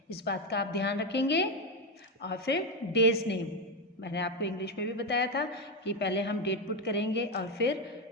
इस बात का आप ध्यान रखेंगे. और फिर डेज नेम, मैंने आपको इंग्लिश में भी बताया था कि पहले हम डेट पुट करेंगे और फिर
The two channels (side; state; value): both; normal; correlation 0.09